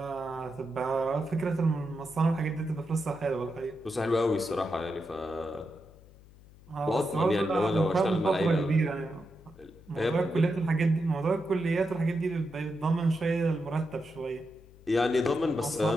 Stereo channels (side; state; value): left; noise; hum, 23 dB below the sound